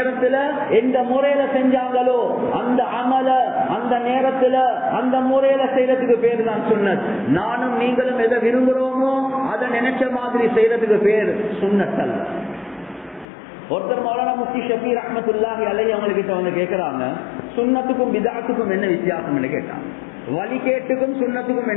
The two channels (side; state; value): right; drops out; at 13.2 s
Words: எந்த முறையில செஞ்சாங்களோ அந்த அமல அந்த நேரத்துல அந்த முறையில செய்யறதுக்கு பேரு தான் சுன்னத். நானும் நீங்களும் எதை விரும்புறோமோ அதை நினைச்ச மாதிரி செய்யறதுக்கு பேர் சுன்னத் அல்ல. ஒருத்தர் மௌலானா முஃப்தி ஷஃபீ ரஹ்மத்துல்லாஹி அலைஹி அவங்ககிட்ட வந்து கேட்கறாங்க, சுன்னத்துக்கும் பிதஅத்துக்கும் என்ன வித்தியாசம்னு கேட்டாங்க. வழிகேட்டுக்கும் சுன்னத்துக்கும்